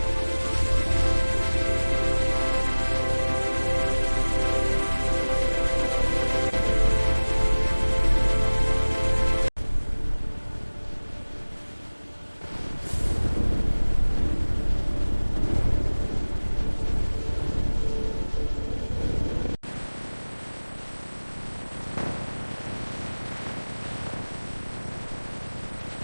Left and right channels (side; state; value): both; inverted; correlation -1.00